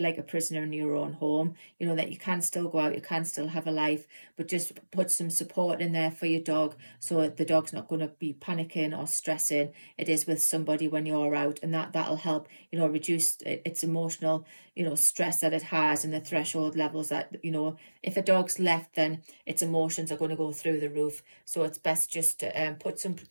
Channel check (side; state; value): both; inverted; correlation -1.00